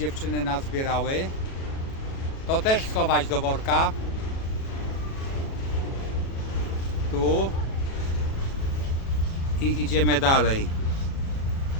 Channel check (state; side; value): late; right; 37 ms